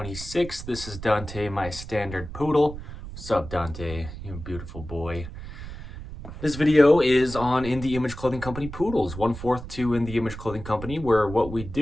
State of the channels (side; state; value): right; noise; rumble, 11 dB below the sound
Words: This is Dante, my standard poodle. What's up, Dante? You beautiful boy. This video is on In the Image Clothing Company poodles, 1/4 to In the Image Clothing Company, where what we